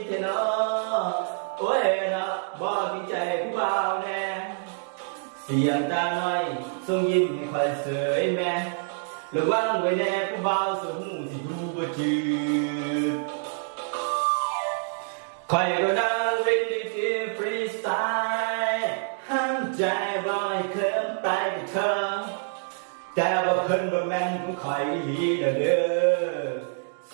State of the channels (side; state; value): left; silent; digital silence